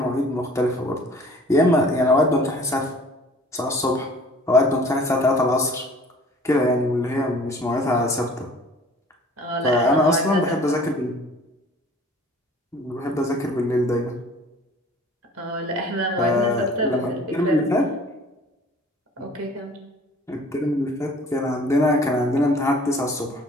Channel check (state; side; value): normal; both; correlation 0.50